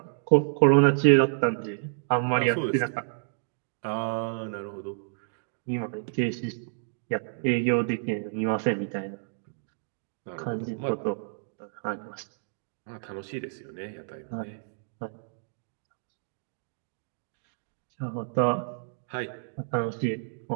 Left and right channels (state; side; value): silent; left; digital silence